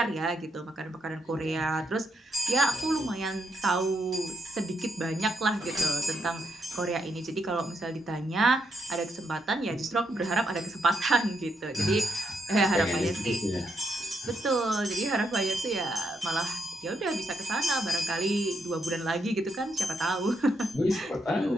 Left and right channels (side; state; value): both; normal; correlation 0.78